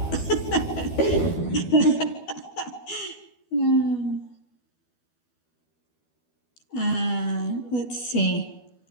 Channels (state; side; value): late; right; 12 ms